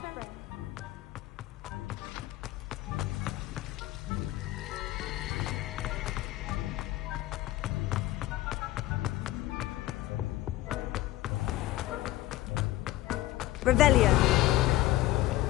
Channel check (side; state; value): right; quieter; 16.1 dB